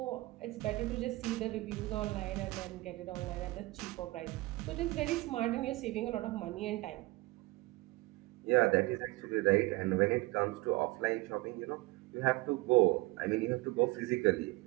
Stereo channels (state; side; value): quieter; left; 21.3 dB